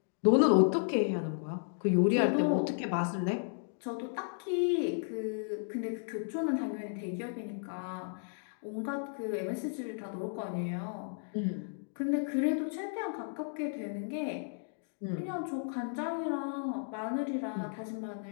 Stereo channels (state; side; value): silent; right; digital silence